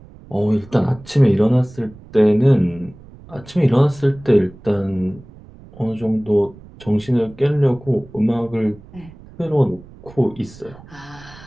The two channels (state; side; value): noise; right; rumble, 21 dB below the sound